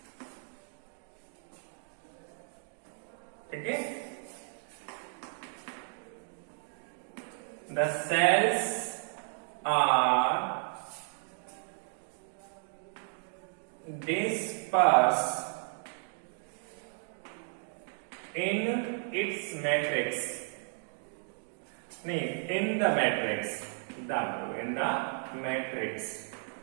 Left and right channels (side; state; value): left; silent; 55 dB below the other